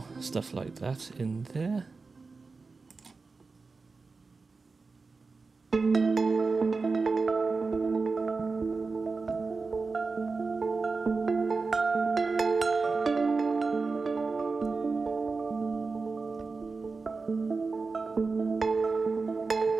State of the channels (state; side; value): quieter; left; 4.2 dB